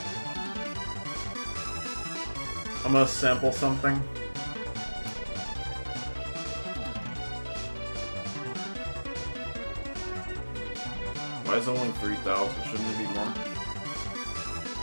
I'm gonna sample something. Why is it only 3,000? Shouldn't it be more?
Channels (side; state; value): both; inverted; correlation -1.00